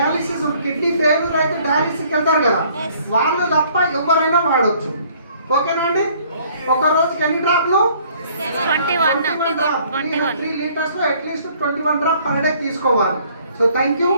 కిడ్నీ ఫెయిల్యూర్ అయితే డయాలిసిస్కి వెళ్తారు కదా, వాళ్ళు తప్ప ఎవరైనా వాడచ్చు. ఓకేనా అండి? ఒక రోజుకి ఎన్ని డ్రాప్లు? 21 3 litres at least 21 drop per day తీసుకోవాలి. So thank you.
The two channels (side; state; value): both; inverted; correlation -0.59